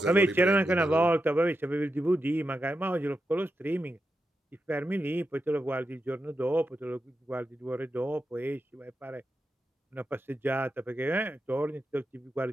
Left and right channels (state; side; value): normal; both; correlation 0.88